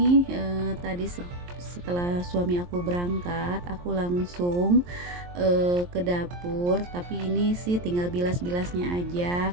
tadi setelah suami aku berangkat, aku langsung ke dapur, tapi ini sih tinggal bilas-bilasnya aja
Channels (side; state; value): left; late; 23 ms